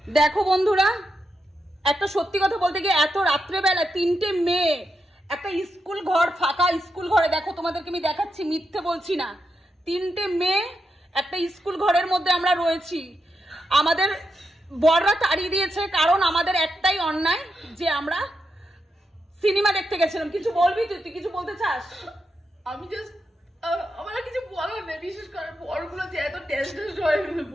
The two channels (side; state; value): both; normal; correlation 0.85